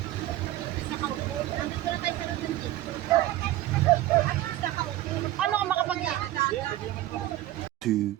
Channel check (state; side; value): quieter; left; 15.0 dB